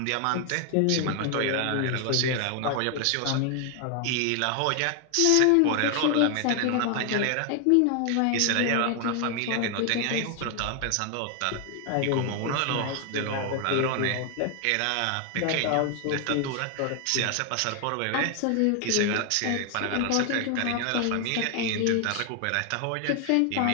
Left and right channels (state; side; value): different; both; correlation 0.00